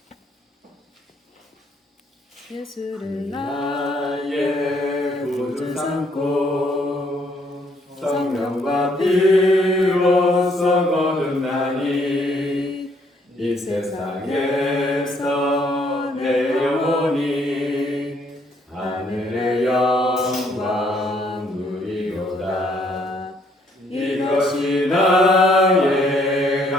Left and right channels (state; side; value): normal; both; correlation 0.68